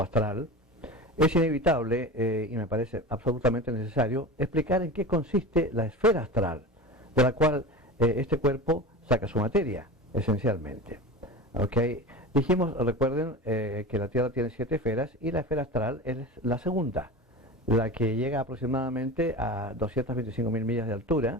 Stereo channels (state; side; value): normal; both; correlation 0.31